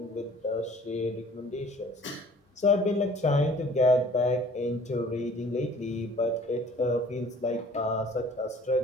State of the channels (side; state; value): both; normal; correlation 0.52